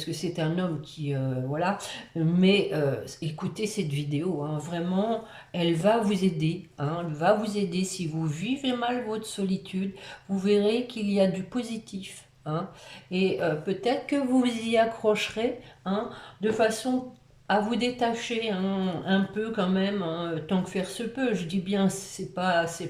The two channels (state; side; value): identical; both; correlation 1.00